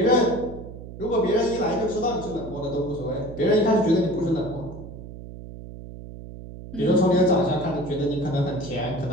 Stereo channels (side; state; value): right; noise; hum, 13 dB below the sound